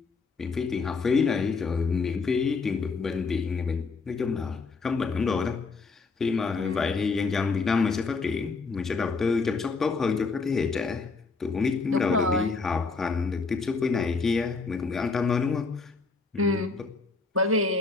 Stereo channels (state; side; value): quieter; right; 4.3 dB